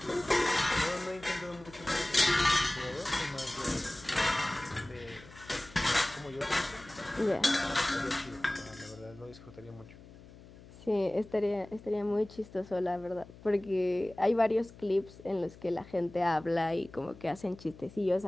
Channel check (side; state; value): left; noise; hum, 20 dB below the sound